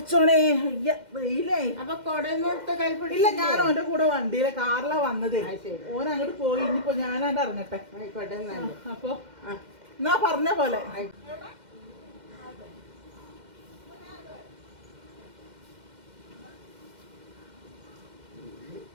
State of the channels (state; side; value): late; left; 2.1 ms